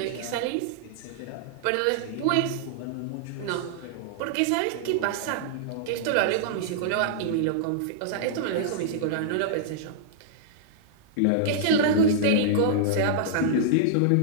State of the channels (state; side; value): different; both; correlation -0.02